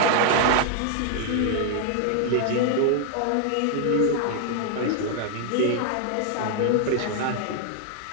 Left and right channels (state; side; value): different; both; correlation 0.00